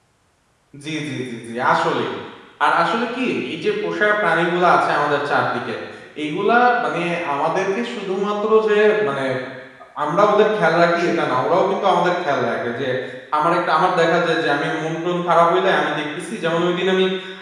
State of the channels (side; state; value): both; identical; correlation 1.00